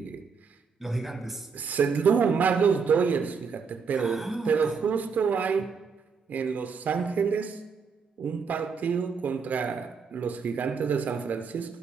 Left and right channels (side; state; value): left; quieter; 5.6 dB